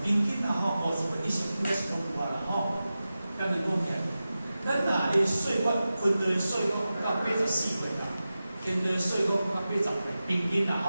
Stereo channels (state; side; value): inverted; both; correlation -0.94